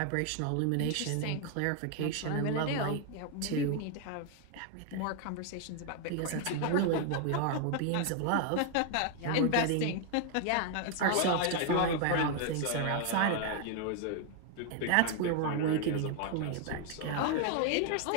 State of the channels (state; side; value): different; both; correlation 0.00